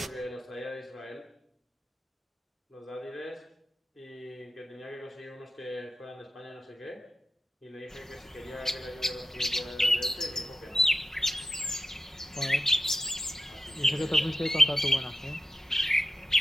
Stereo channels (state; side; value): normal; both; correlation 0.92